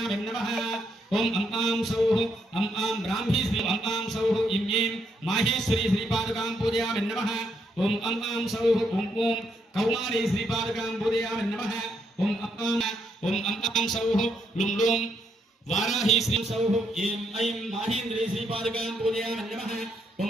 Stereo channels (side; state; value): both; normal; correlation 0.76